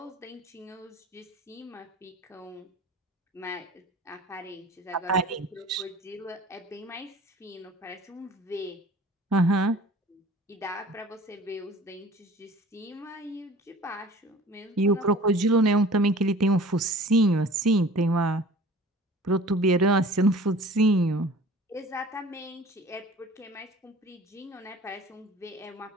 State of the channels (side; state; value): both; normal; correlation 0.45